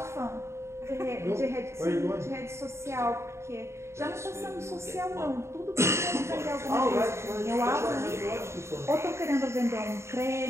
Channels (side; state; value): left; late; 0.13 ms